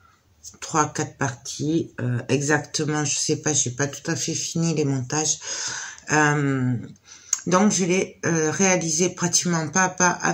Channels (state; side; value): identical; both; correlation 1.00